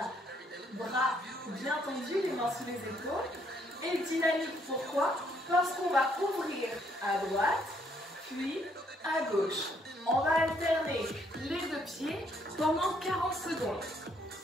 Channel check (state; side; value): normal; both; correlation 0.69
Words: Bras bien tendus, les mains sous les épaules. Et dynamique, pourquoi? Parce qu'on va ouvrir à droite, puis à gauche. On va alterner les deux pieds pendant 40 secondes.